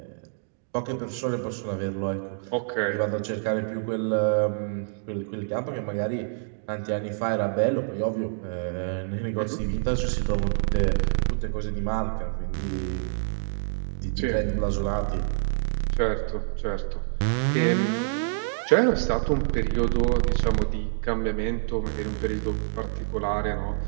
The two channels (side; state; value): left; silent; digital silence